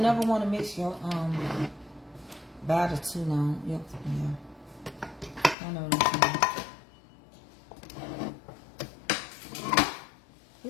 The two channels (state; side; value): drops out; right; at 5.6 s